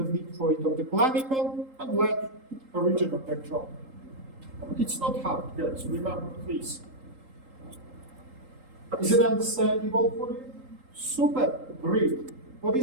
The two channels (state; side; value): late; left; 3.8 ms